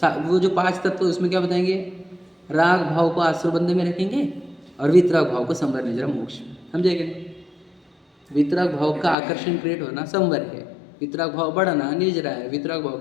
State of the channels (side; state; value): right; drops out; at 9.2 s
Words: वो जो 5 तत्व उसमें क्या बताएंगे? राग भाव को आश्रबंध में रखेंगे और वीतराग भाव को संवर निजरा मोक्ष। समझेंगे? वितराग भाव का आकर्षण क्रिएट होना संवर है, वितराग भाव बढ़ना निजरा है, वितराग भाव